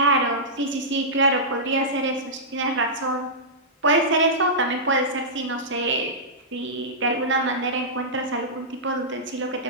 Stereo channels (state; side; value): normal; both; correlation -0.14